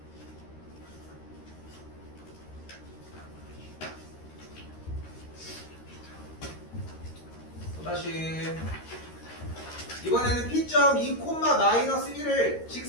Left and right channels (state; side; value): late; right; 13 ms